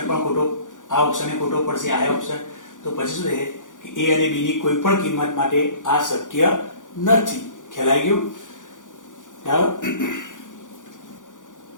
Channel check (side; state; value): right; late; 0.87 ms